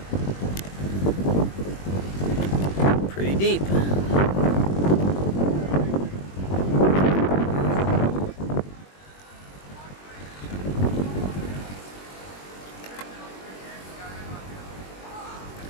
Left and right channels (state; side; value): late; right; 21 ms